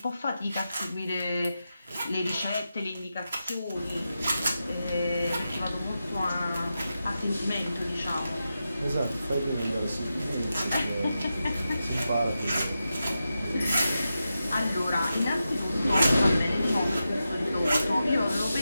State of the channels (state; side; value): inverted; both; correlation -0.90